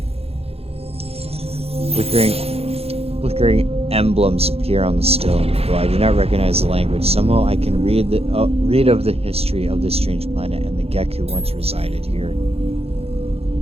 Flickering emblems appear on the stone. Though I do not recognize the language, somehow I can read of the history of this strange planet and the Gek who once resided here.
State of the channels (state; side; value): late; left; 0.29 ms